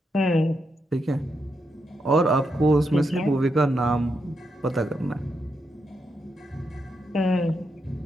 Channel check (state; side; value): normal; both; correlation 0.82